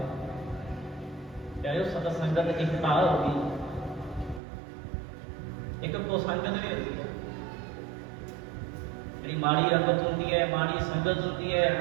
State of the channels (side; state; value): left; drops out; at 4.4 s